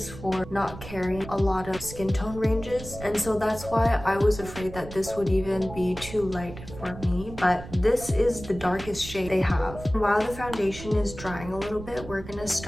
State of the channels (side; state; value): right; noise; rumble, 13 dB below the sound